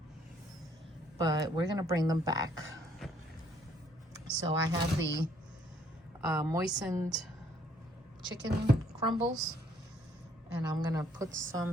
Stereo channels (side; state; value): both; normal; correlation 0.65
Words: But we're gonna bring them back. So I have the moistened chicken crumbles, and I'm gonna put